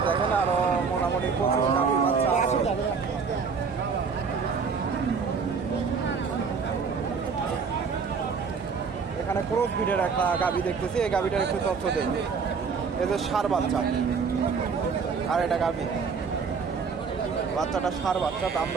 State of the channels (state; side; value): quieter; left; 5.5 dB